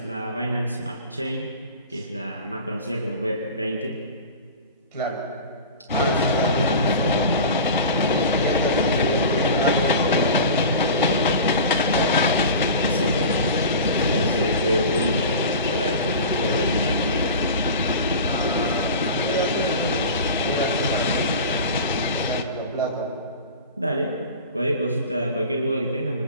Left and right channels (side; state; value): both; inverted; correlation -0.35